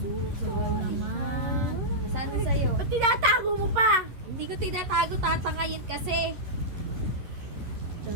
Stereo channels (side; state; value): left; late; 11 ms